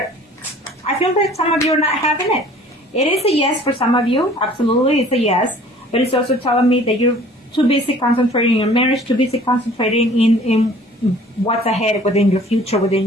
feel that some of you are not having it. It is a yes for some of you. Absolutely, it's a yes. But it's also telling me that you're too busy concentrating on your marriage, too busy concentrating in what's ahead within your future, within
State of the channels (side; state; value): both; normal; correlation 0.51